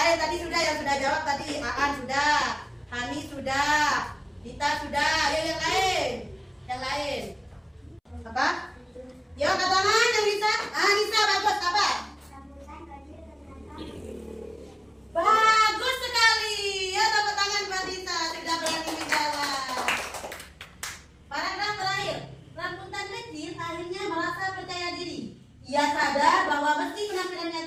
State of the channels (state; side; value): identical; both; correlation 1.00